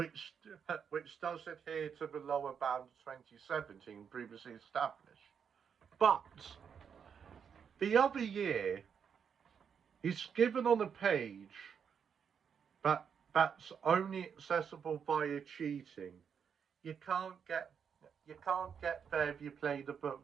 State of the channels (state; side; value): quieter; left; 7.2 dB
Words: does adhere to the lower bound of 2017 previously established. But the other year is given on a page that's only accessible via cheating. You can't get there if you play the